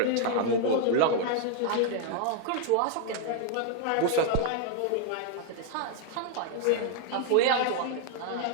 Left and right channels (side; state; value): both; different; correlation 0.00